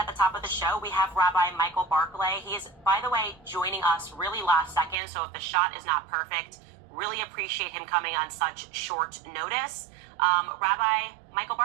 the top of the show, we have Rabbi Michael Barclay. He is, by the way, joining us really last second, so if the shot is not perfect, really appreciate him coming on such short notice. Rabbi Michael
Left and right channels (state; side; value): drops out; left; at 5.0 s